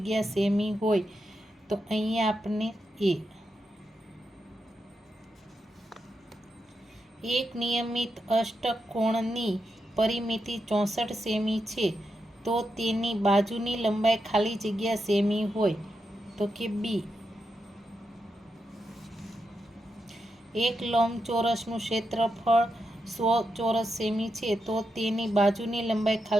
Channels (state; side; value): normal; both; correlation 0.86